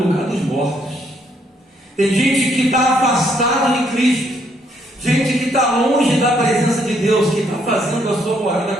lugar dos mortos. Tem gente que está afastado de Cristo, gente que está longe da presença de Deus, que está fazendo a sua morada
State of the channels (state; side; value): normal; both; correlation 0.71